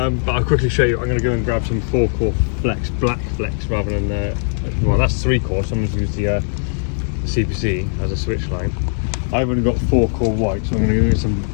I'll quickly show you. I'm going to go and grab some 4-core flex, black flex, rather than, well, that's 3-core, so I'm going to use the CPC as a switch line. I've only got 4-core white, so I'm going to go get some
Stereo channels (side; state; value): right; silent; digital silence